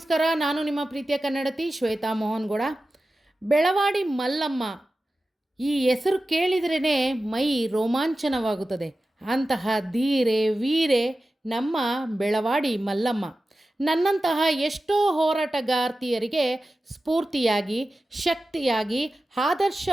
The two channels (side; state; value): both; normal; correlation 0.94